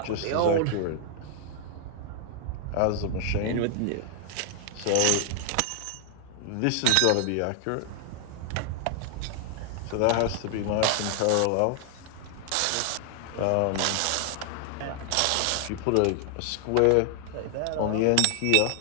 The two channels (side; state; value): both; different; correlation 0.00